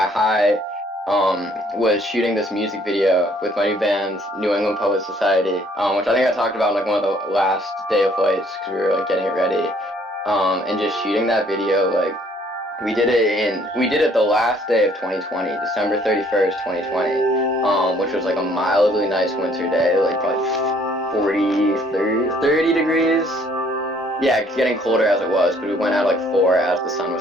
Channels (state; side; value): normal; both; correlation 0.62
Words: high was shooting this music video with my new band, New England Poet Society, which I think I talked about in like one of the last day of flights because we were like getting it ready, and just shooting that video. Like we did it the last day of 2020, December 31st, 2020, which was like a mildly nice winter day, like probably 30 degrees. Yeah, it's getting colder as it was, but we went out like 4 as the sun